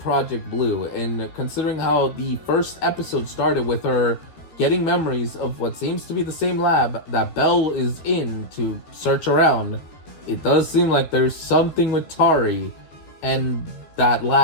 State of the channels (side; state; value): right; late; 12 ms